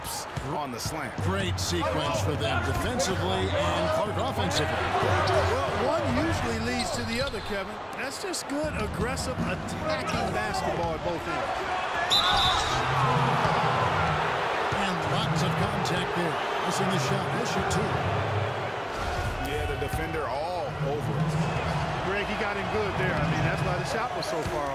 on the slant. Great sequence for them defensively and Clark offensively. Well, one usually leads to the other, Kevin. That's just good, aggressive, attacking basketball at both ends. And lots of contact there. Missing the shot. He'll shoot 2. Yeah, the defender all over it. Greg, he got him good there. I mean, that's why the shot was so far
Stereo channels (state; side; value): identical; both; correlation 1.00